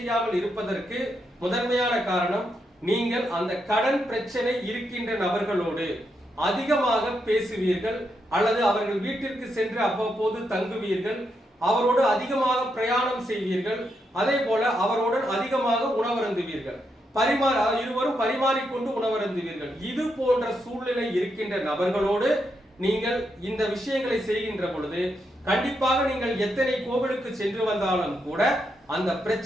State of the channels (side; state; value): both; normal; correlation 0.81